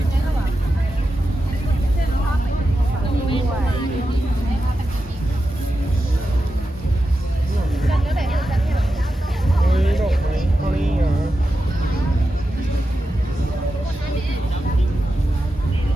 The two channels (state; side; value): normal; both; correlation 0.90